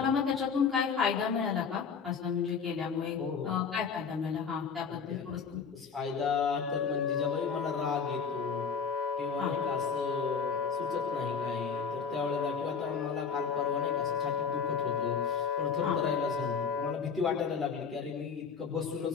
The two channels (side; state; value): right; quieter; 6.0 dB